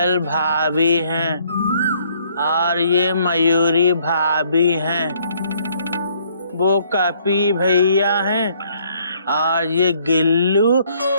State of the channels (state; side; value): inverted; both; correlation -0.65